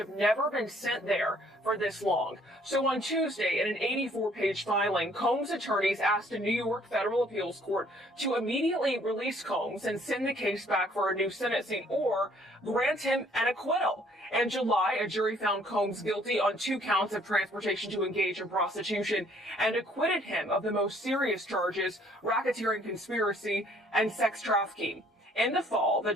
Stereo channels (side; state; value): both; normal; correlation 0.61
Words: never been sent there for this long. So on Tuesday, in an 84-page filing, Combs' attorneys asked a New York federal appeals court to immediately release Combs and send the case back for a new sentencing or grant him an acquittal. In July, a jury found Combs guilty on 2 counts of transportation to engage in prostitution and acquitted him of the most serious charges, racketeering conspiracy and sex trafficking. In the fall, the